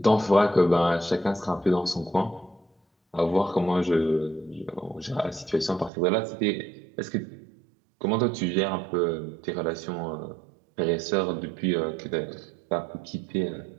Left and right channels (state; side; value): drops out; left; at 5.9 s